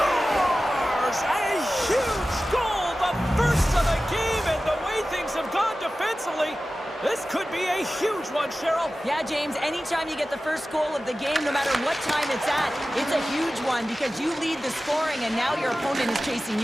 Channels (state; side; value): normal; both; correlation 0.95